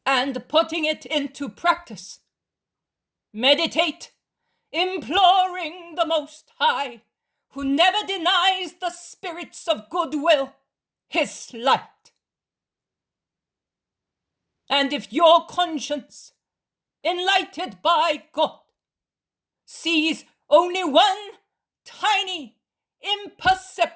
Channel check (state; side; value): identical; both; correlation 1.00